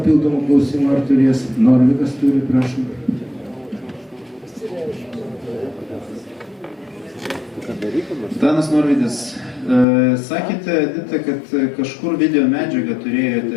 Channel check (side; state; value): right; drops out; at 9.9 s